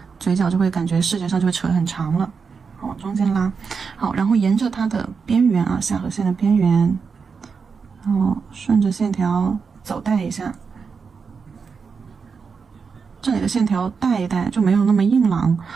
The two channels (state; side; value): quieter; left; 5.5 dB